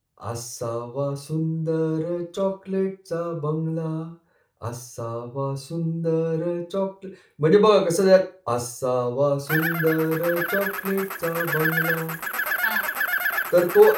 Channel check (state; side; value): identical; both; correlation 1.00